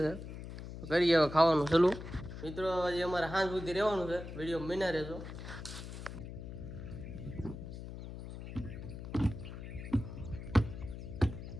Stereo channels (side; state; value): left; noise; hum, 10 dB below the sound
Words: છે. કરીએ હવે ખાવાનું ચાલુ. મિત્રો હજી અમારે સાંજ સુધી રહેવાનું છે, વિડીયો બન્યા રહેજો.